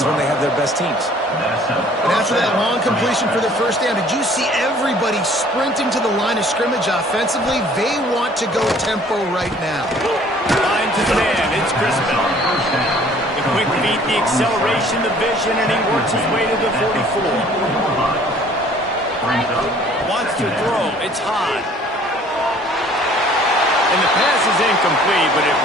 when they have their best teams. And after that long completion for the first down, did you see everybody sprinting to the line of scrimmage offensively? They want to go tempo right now. Line to the man. It's Crispin. The quick feet, the acceleration, the vision, and he works his way to the 44. Wants to throw. It's high. And the pass is incomplete, but it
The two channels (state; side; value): normal; both; correlation 0.55